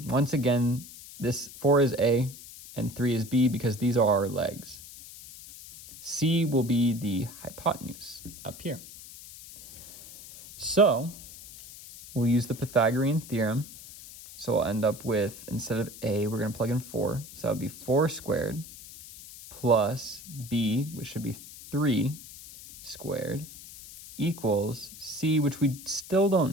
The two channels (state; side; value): noise; left; hiss, 16 dB below the sound